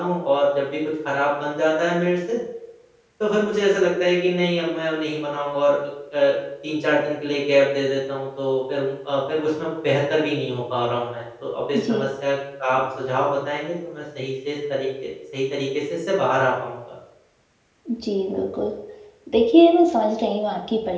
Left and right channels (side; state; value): both; identical; correlation 1.00